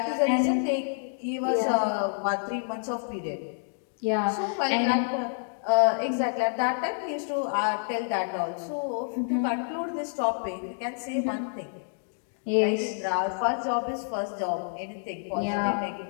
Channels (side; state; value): right; silent; digital silence